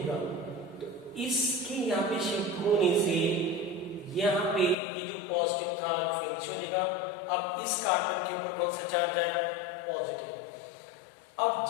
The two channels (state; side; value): drops out; right; at 4.8 s